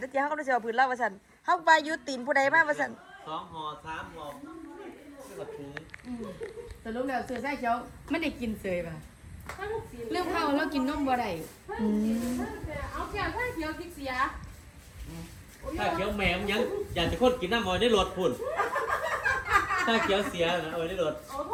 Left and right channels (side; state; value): both; identical; correlation 1.00